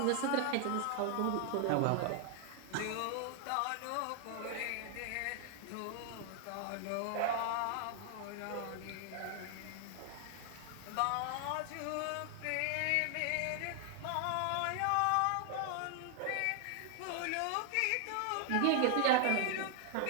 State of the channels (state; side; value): different; both; correlation 0.00